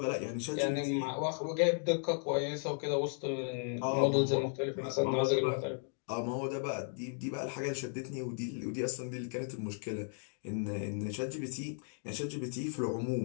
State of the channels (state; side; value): silent; right; 54 dB below the other